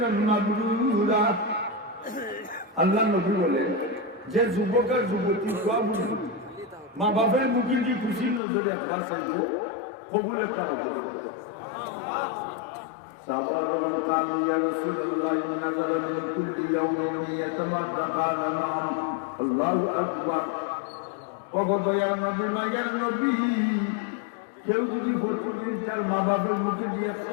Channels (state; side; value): drops out; right; at 8.4 s